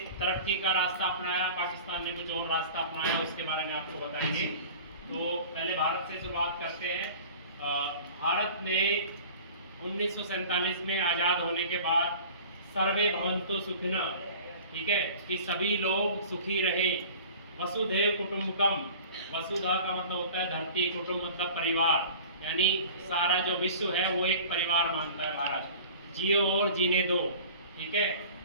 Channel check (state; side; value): inverted; both; correlation -0.42